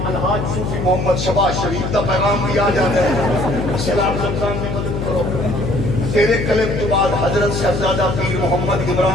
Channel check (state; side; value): noise; left; hum, 3 dB below the sound